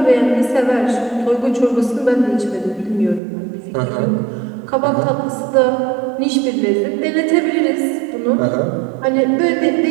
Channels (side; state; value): left; drops out; at 3.2 s